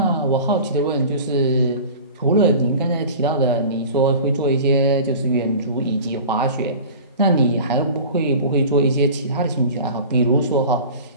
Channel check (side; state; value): both; inverted; correlation -0.38